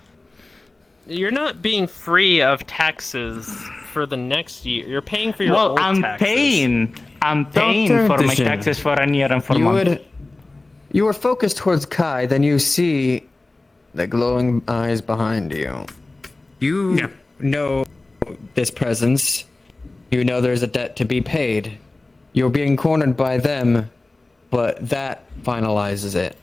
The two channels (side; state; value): right; quieter; 3.0 dB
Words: You're not being free of taxes for the next year. You're paying for your Well, old I'm taxes. paying for my Vision. taxes for a year and 4 You months. you are focused towards Kai, then you see the glowing eyes behind you. You Yeah. know this presence. You know there's a debt to be paid. You're being cornered by them, but that finalizes it.